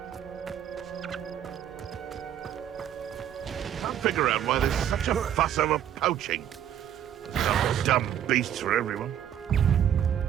Figure out why there's such a fuss over poaching. Some dumb beasts for everyone.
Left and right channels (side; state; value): left; quieter; 10.1 dB